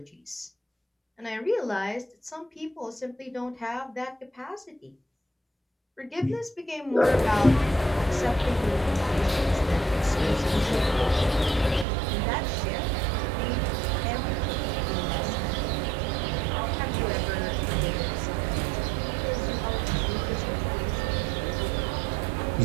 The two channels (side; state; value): left; drops out; at 11.9 s